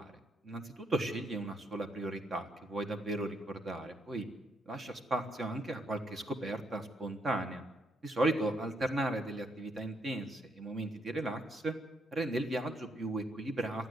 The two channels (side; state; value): both; normal; correlation 0.75